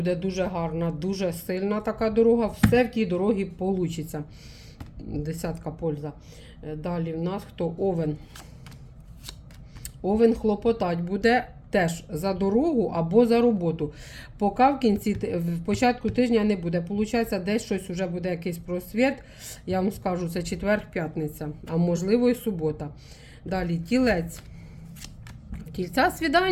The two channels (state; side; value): identical; both; correlation 1.00